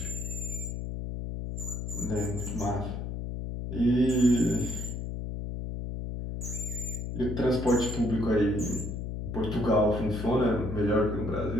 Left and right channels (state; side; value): noise; left; hum, 5 dB below the sound